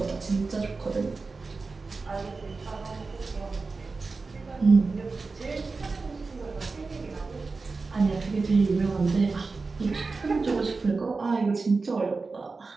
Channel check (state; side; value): quieter; left; 4.1 dB